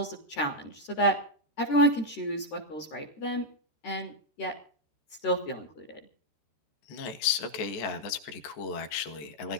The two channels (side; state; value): right; late; 14 ms